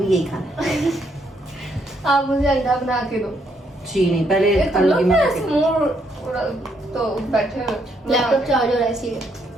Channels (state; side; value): normal; both; correlation 0.73